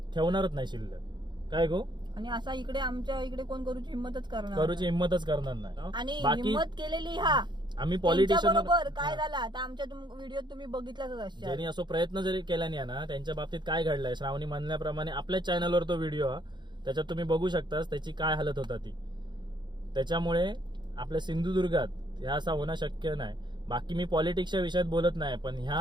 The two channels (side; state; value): left; late; 0.22 ms